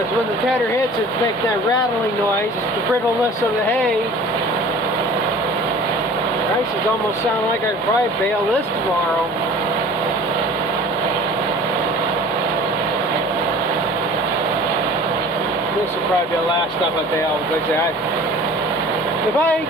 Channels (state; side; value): normal; both; correlation 0.44